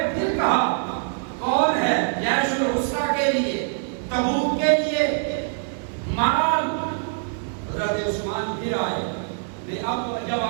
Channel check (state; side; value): silent; left; digital silence